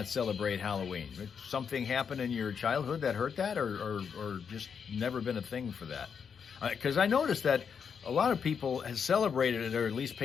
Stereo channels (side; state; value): right; quieter; 6.7 dB